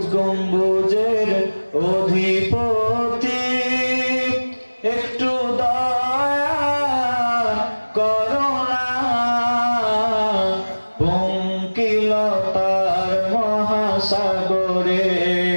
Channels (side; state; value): both; inverted; correlation -1.00